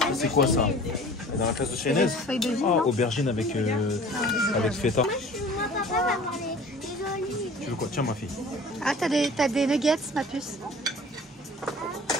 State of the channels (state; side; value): normal; both; correlation 0.45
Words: C'est quoi, ça? Et dans la classe de Chaynez? Ah, aubergine avec feta. Tu veux quoi? Tiens, ma fille. Ah, t'as des nuggets, ma puce.